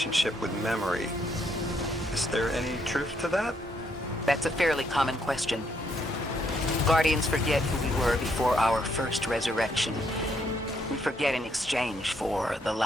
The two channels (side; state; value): both; normal; correlation 0.73